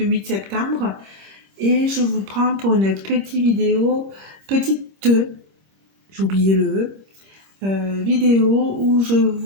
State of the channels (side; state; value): left; late; 26 ms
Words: septembre et je vous prends pour une petite vidéo, j'ai oublié le vidéo où je